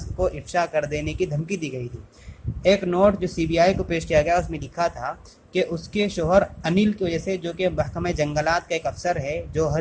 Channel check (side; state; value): both; identical; correlation 1.00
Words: को इफ्शा कर देने की धमकी दी गई थी। ایک نوٹ جو سی بی آئی کو پیش کیا گیا اس میں لکھا تھا کہ اس کے شوہر انل کی وجہ سے، جو کہ محکمہ جنگلات کا ایک افسر ہے،